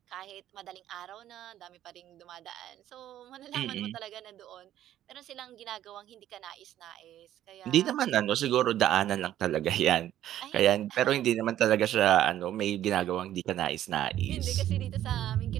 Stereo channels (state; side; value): quieter; left; 12.2 dB